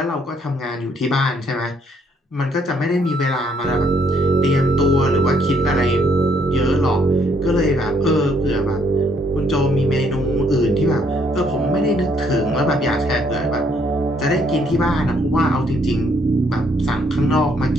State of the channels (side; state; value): both; normal; correlation 0.69